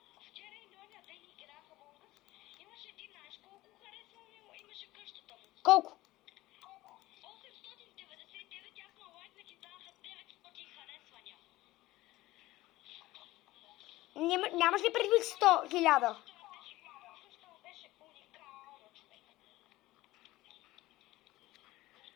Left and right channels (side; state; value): right; quieter; 17.7 dB